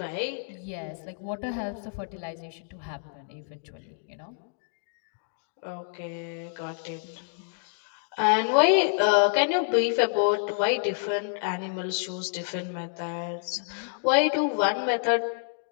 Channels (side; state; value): right; silent; digital silence